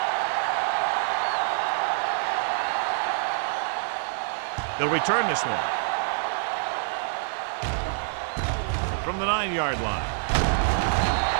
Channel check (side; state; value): left; silent; digital silence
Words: They'll return this one. From the 9-yard line.